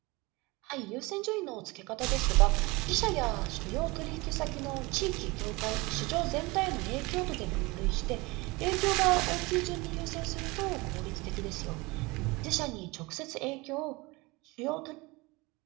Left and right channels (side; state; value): left; quieter; 24.0 dB